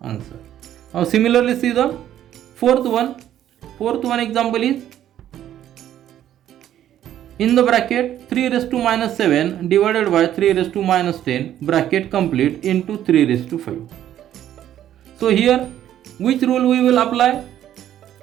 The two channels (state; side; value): quieter; left; 11.5 dB